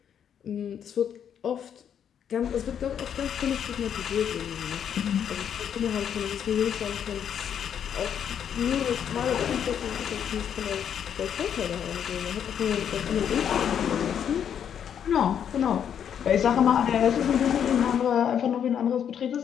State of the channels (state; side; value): quieter; right; 8.6 dB